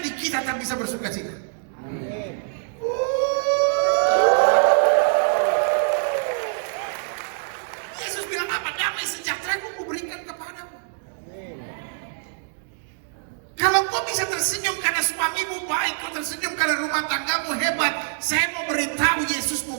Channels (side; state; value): left; silent; digital silence